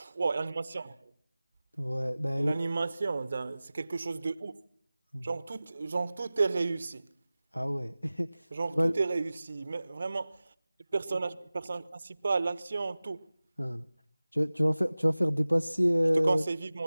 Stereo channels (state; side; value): inverted; both; correlation -0.97